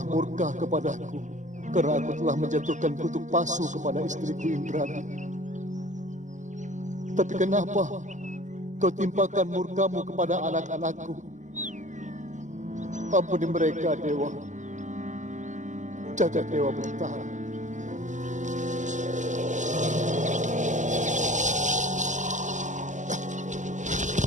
murka kepadaku karena aku telah menjatuhkan kutuk pasu kepada istriku Indrani. Tapi kenapa kau timpakan murkamu kepada anak-anakku? Ampuni mereka, Dewa. Jagat Dewa Batara.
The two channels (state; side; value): late; left; 0.35 ms